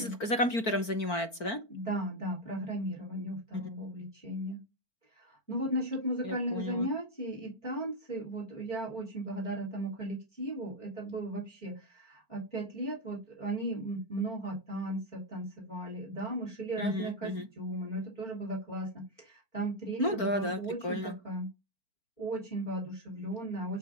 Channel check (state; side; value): late; right; 4.4 ms